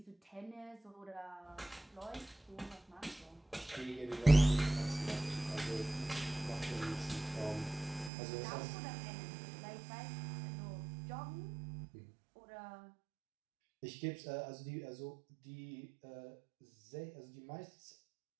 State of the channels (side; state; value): left; drops out; at 8.1 s